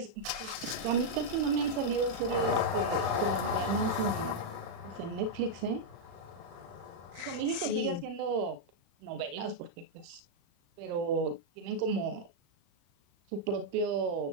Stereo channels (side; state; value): left; late; 35 ms